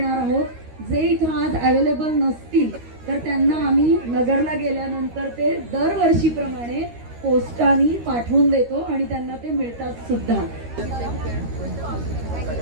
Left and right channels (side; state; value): left; late; 13 ms